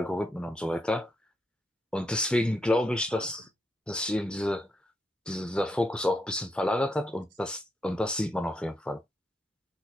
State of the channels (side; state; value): both; normal; correlation 0.81